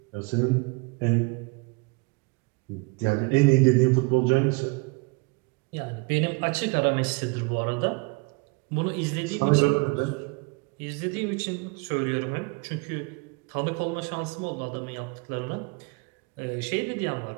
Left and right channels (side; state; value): left; quieter; 28.7 dB